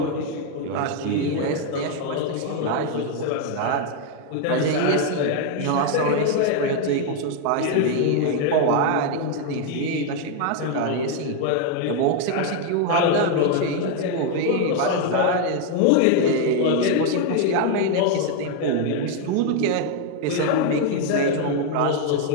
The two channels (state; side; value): different; both; correlation 0.00